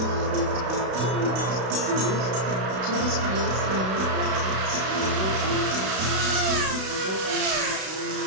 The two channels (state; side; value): late; left; 32 ms